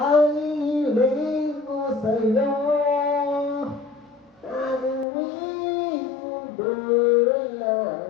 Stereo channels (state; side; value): drops out; right; at 5.1 s